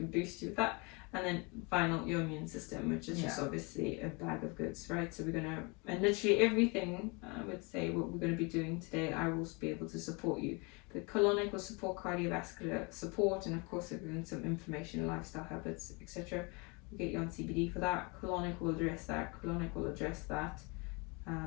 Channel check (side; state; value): right; quieter; 29.5 dB